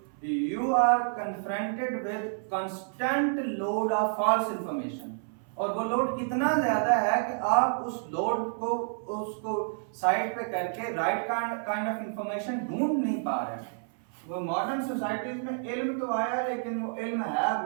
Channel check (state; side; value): silent; left; 58 dB below the other